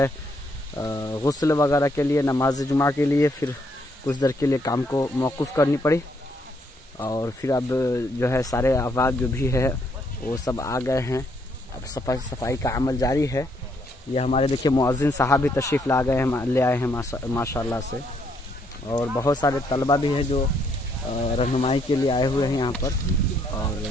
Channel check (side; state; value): both; normal; correlation 0.72